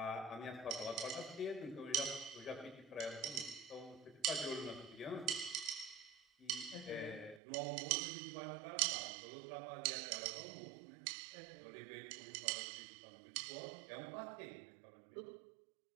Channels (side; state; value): left; drops out; at 7.4 s